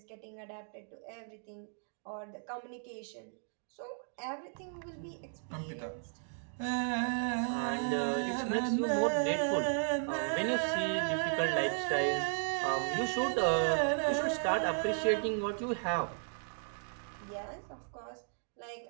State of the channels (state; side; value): silent; left; digital silence